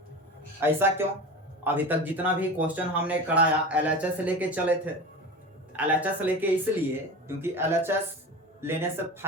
ऐसा क्यों? अभी तक जितना भी क्वेश्चन हमने कराया LHS लेके चले थे, LHS लेके इसलिए क्योंकि LHS लेने से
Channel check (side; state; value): both; normal; correlation 0.30